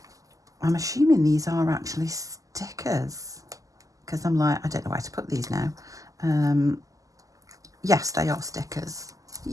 assuming these are actually stickers because I'm like, I don't know where to put these now. Yes, they are stickers.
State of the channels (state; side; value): late; left; 0.17 ms